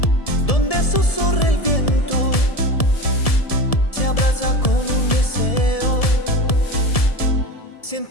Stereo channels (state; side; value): late; right; 1.7 ms